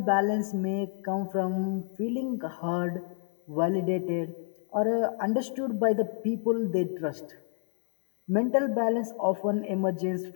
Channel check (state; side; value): silent; right; 55 dB below the other